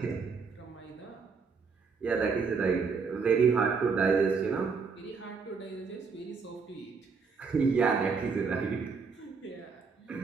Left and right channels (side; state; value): left; quieter; 5.2 dB